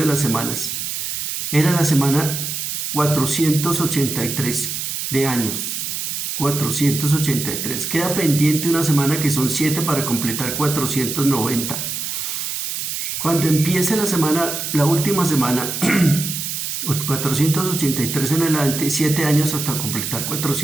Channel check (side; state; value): right; noise; hiss, 4 dB below the sound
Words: las semanas, era la semana 483 de años. 483. Queda pendiente una semana que son 7 para completar 490. Cuando empiece la semana, la última semana, 483 en adelante, 7 años hasta completar